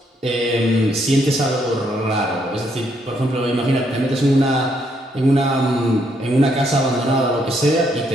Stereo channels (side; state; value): both; normal; correlation 0.73